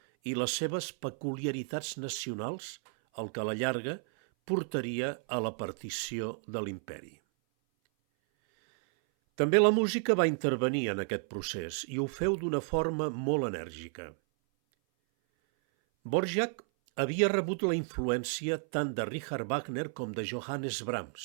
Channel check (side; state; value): left; silent; 56 dB below the other